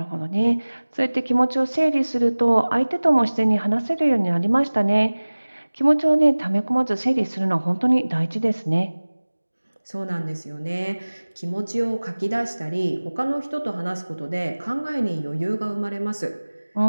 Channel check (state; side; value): inverted; both; correlation -1.00